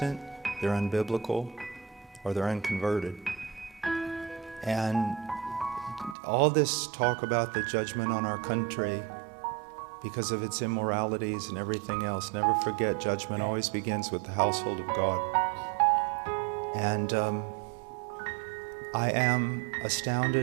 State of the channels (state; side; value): drops out; left; at 6.2 s